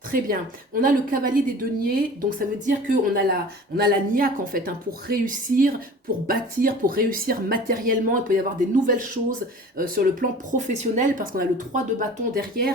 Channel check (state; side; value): normal; both; correlation 0.42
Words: Très bien. On a le cavalier des deniers, donc ça veut dire qu'on a la niaque en fait, hein, pour réussir, pour bâtir, pour réussir matériellement. Il peut y avoir des nouvelles choses sur le plan professionnel, parce qu'on a le 3 de bâton